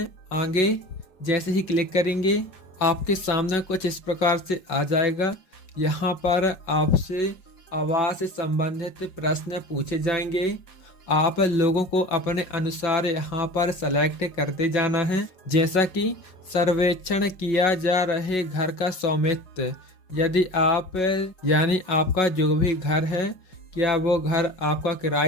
आगे। जैसे ही क्लिक करेंगे आपके सामने कुछ इस प्रकार से आ जाएगा। यहाँ पर आपसे आवास से संबंधित प्रश्न पूछे जाएंगे। आप लोगों को अपने अनुसार यहाँ पर सेलेक्ट करते जाना है। जैसा कि सर्वेक्षण किया जा रहे घर का स्वामित्व, यदि आप यानी आपका जो भी घर है, क्या वो घर आपका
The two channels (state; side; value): late; right; 5.4 ms